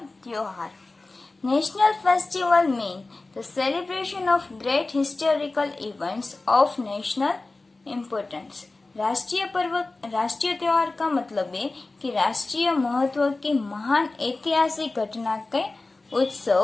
त्योहार. National festival mean the celebration of great historical events of national importance. राष्ट्रीय त्योहार का मतलब है कि राष्ट्रीय महत्व की महान ऐतिहासिक घटना के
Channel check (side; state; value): right; quieter; 3.3 dB